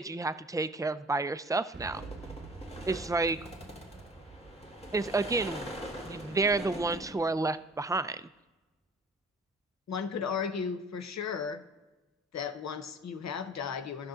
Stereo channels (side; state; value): both; normal; correlation 0.47